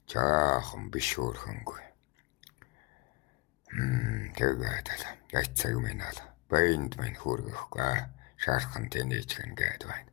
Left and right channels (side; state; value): right; quieter; 23.3 dB